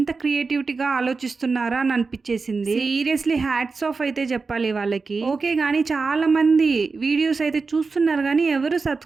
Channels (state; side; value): quieter; left; 4.4 dB